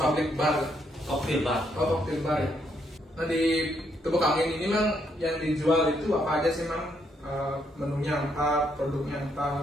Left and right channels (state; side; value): normal; both; correlation 0.74